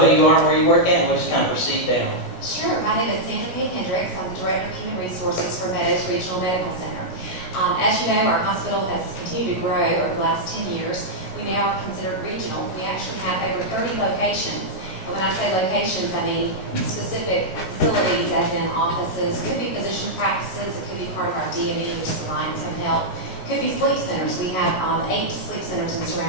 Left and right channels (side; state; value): right; late; 16 ms